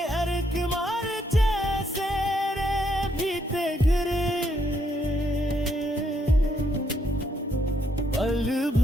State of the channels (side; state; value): both; normal; correlation 0.74